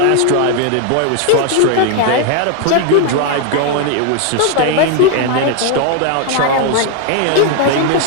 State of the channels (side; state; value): both; different; correlation 0.01